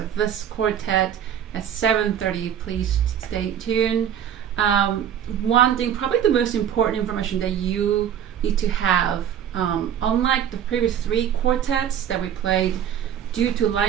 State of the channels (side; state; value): left; quieter; 9.4 dB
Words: this quartet at 7:30. Please stay tuned. One thing, probably the most important information that you need to have, unlike the previous 3 quartets that we played, due to